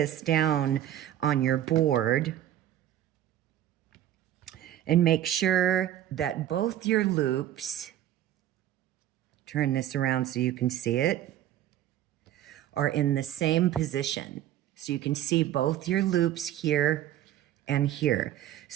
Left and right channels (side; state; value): left; quieter; 12.1 dB